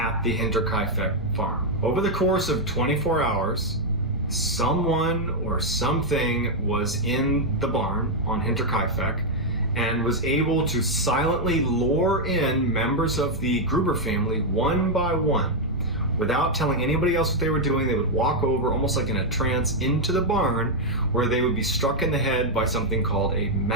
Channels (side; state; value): both; normal; correlation -0.01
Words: the Hinterkaifeck farm. Over the course of 24 hours, someone or something was in the barn on Hinterkaifeck and was able to silently lure in members of the Gruber family one by one. Without telling anybody else what they were doing, they would walk over almost like in a trance into the barn where they would be struck in the head by something called a